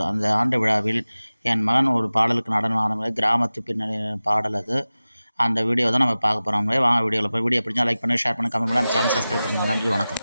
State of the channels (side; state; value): both; inverted; correlation -0.96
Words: அந்த ஆண்டு விழாவில் என் மகன் ஒரு பாடலுக்கு நடனம் ஆனது, கிராமத்து பின்னணி பாடல் அது. அந்த வீடியோ தான் நம்ம பார்க்க போகிறோம். வாங்க வீடியோவில் போய் வீடியோ பிடிச்சா லைக் பண்ணி ஷேர் பண்ணி கமெண்ட் பண்ணி நம்ம சேனல் சப்ஸ்கிரைப் பண்ணுங்கள். நன்றி, வணக்கம்.